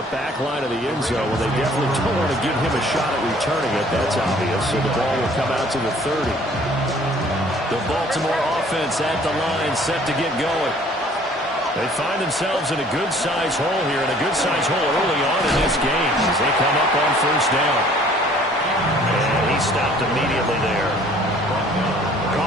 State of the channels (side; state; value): both; normal; correlation 0.55